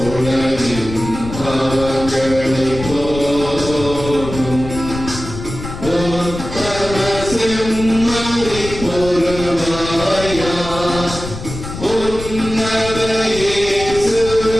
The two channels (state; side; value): noise; left; rumble, 10 dB below the sound